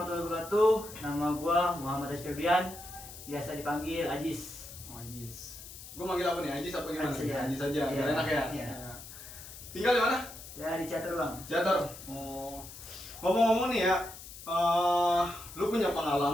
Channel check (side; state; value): left; noise; hiss, 14 dB below the sound